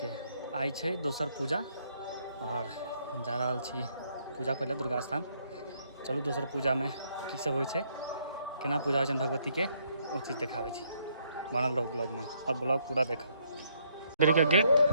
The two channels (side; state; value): both; inverted; correlation -0.70